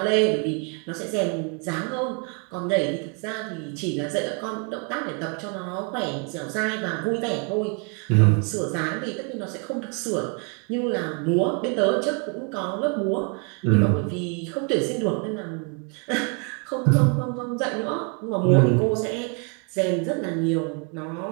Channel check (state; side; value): quieter; left; 35.8 dB